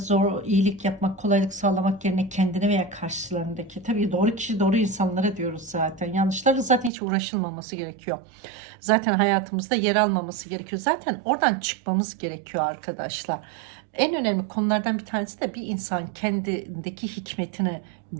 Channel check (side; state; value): left; drops out; at 6.9 s